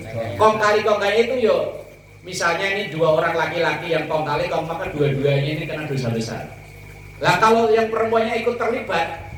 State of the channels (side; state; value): both; identical; correlation 1.00